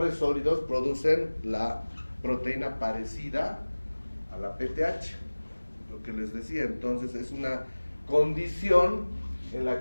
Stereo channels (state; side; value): inverted; both; correlation -1.00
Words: sólidos producen la proteína parecida a la PTH, lo que les decía. Entonces es una condición en